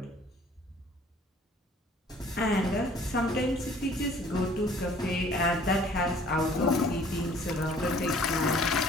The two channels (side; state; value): both; normal; correlation 0.54